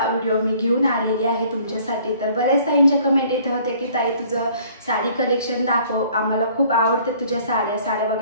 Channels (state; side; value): inverted; both; correlation -0.56